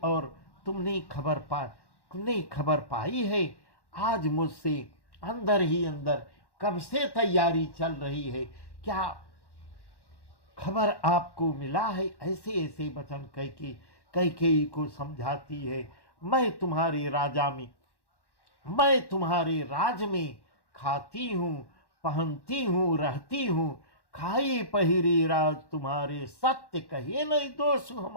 और तुमने खबर पाई है। आज मुझसे अंदर ही अंदर कब से तैयारी चल रही है, क्या खबर आपको मिला है? ऐसे ऐसे वचन कैकेयी को समझाती है। मैं तुम्हारे राज में खाती हूँ, पहनती हूँ, रहती हूँ। खाई पहिरी राज तुम्हारे, सत्य कहे नहीं दोष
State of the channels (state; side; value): late; right; 1.1 ms